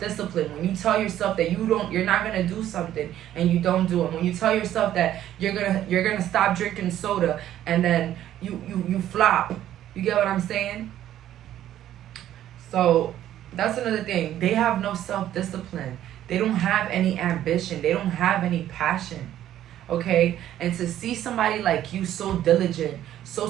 When you tell yourself that you're not gonna do something and you don't do it. When you tell yourself that you're gonna stop drinking soda and then you flop. You get what I'm saying? So that's another thing. They have no self-discipline. They don't have any ambition. They don't have any passion. Okay? And to see somebody like you so diligent, so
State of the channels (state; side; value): quieter; left; 12.0 dB